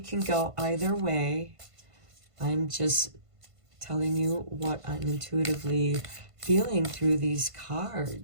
go either way. I'm just telling you what I'm intuitively feeling through these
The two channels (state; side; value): late; left; 1.5 ms